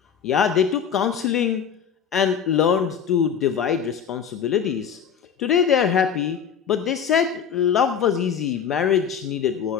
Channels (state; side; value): quieter; right; 7.7 dB